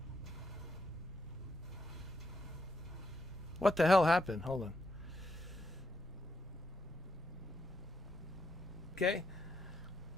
What the hell happened? Hold on. Okay.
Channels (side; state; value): both; normal; correlation 0.79